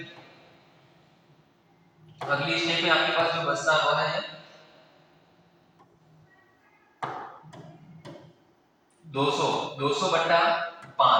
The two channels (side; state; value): both; identical; correlation 1.00